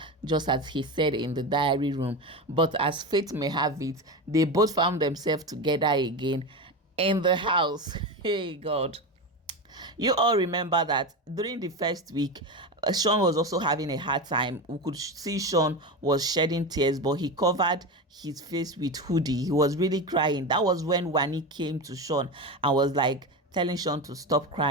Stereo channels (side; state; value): both; normal; correlation 0.20